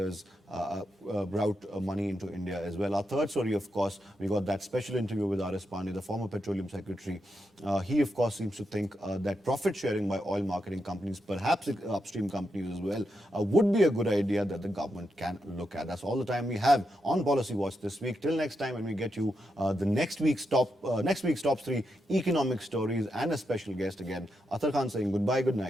route money into India as well. Our third story, of course, we got that special interview with R.S. Pandey, the former Petroleum Secretary. He, of course, seems to think that profit sharing by oil marketing companies, perhaps upstream companies as well, would be a good idea that the government can look at. That's all the time we have on Policy Watch this week. Till next time, when we get you the next week's top 3 economic stories and a special guest again. Athar Khan saying goodbye, good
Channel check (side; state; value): both; normal; correlation 0.84